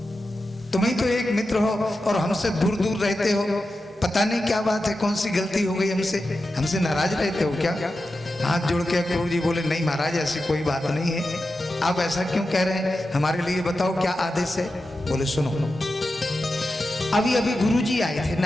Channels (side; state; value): both; normal; correlation 0.91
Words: तुम ही तो एक मित्र हो और हमसे दूर दूर रहते हो। पता नहीं क्या बात है, कौन सी गलती हो गई हमसे, हमसे नाराज रहते हो क्या? हाथ जोड़ के अक्रूर जी बोले, नहीं महाराज, ऐसी कोई बात नहीं है, आप ऐसा क्यों कह रहे हैं, हमारे लिए बताओ क्या आदेश है। बोले सुनो, अभी अभी गुरु जी आए थे,